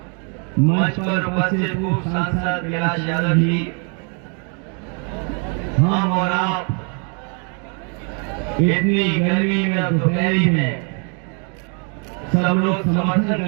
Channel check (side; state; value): left; quieter; 38.6 dB